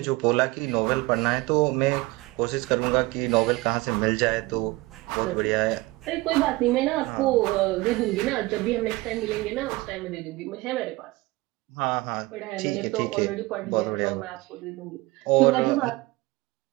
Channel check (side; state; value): left; quieter; 21.1 dB